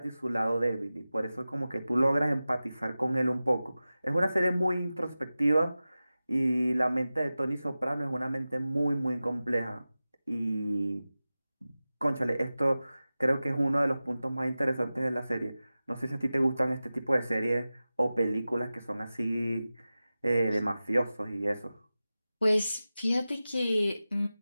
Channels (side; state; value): both; inverted; correlation -0.95